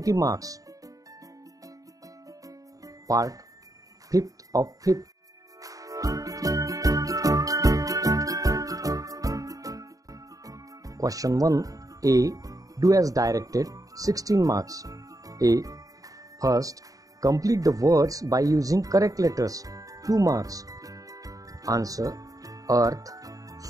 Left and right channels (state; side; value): late; left; 0.17 ms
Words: marks. Part 5th of 5th. Question 1 A. Do as directed 16 marks. A. First, complete the words by using correct letters 2 marks. Answer: earth,